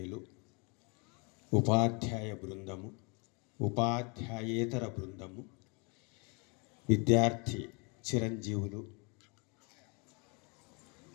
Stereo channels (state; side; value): quieter; right; 32.6 dB